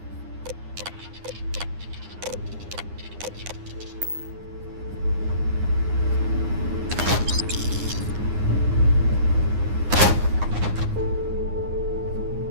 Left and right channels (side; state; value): left; late; 9.7 ms